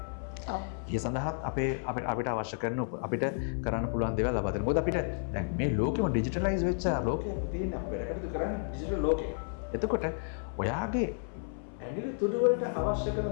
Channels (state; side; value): silent; right; 56 dB below the other